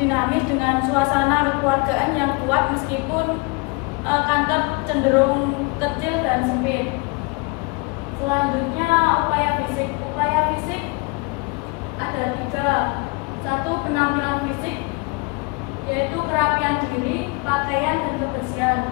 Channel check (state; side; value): quieter; right; 28.8 dB